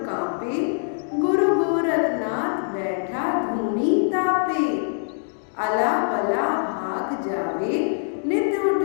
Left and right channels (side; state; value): right; silent; digital silence